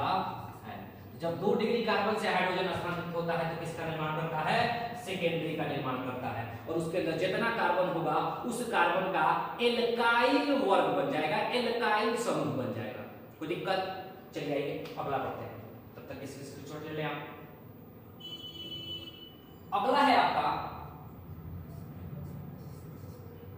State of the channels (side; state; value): both; identical; correlation 1.00